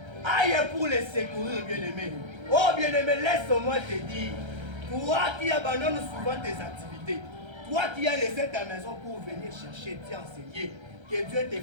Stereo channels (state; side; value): late; left; 1.3 ms